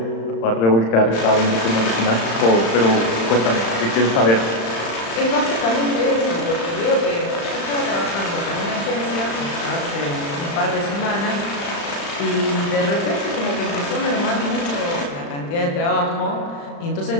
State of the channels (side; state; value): right; late; 35 ms